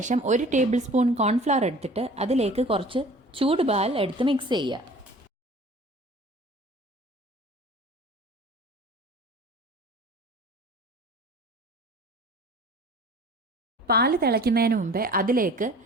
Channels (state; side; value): normal; both; correlation 0.45